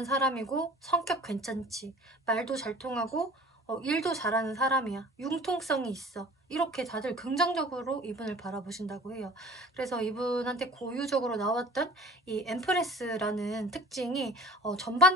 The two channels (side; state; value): both; normal; correlation 0.44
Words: 사람이고 성격 괜찮지. 말도 잘 통하고 일도 잘하는 사람이야. 융통성이 있어. 이렇게 다들 긍정적으로 이분을 바라보신다고 해요. 그래서 이분한테 고유적으로 나왔던 이 엠프레스라는 특징이